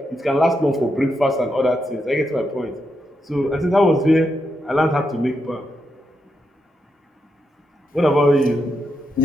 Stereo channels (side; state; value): both; normal; correlation 0.83